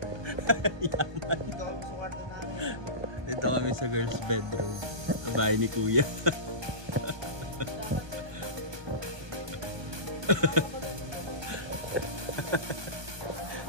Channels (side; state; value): left; late; 1.2 ms